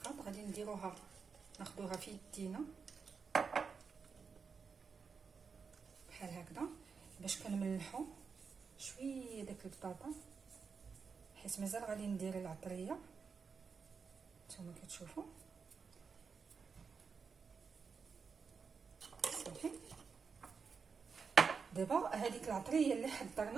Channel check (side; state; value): left; quieter; 5.5 dB